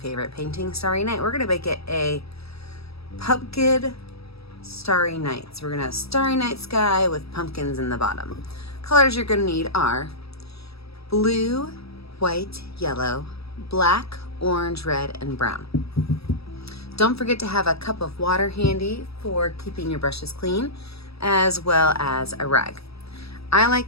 painting, Starry Night. We're going to make it a pumpkin starry night. So we're going to have starry night sky with pumpkins in the bottom. Colors you're going to need are blue, white, yellow, black, orange, red, and brown. Don't forget to have a cup of water handy for keeping your brushes clean, as well as a rag. I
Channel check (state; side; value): late; right; 0.77 ms